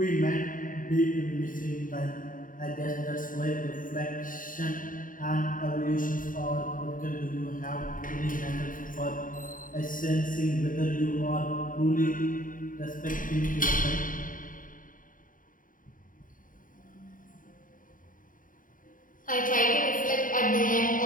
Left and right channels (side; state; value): right; late; 0.39 ms